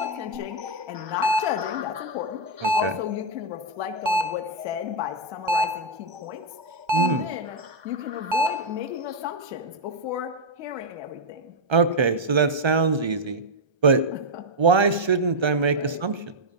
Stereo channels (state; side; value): late; left; 1.3 ms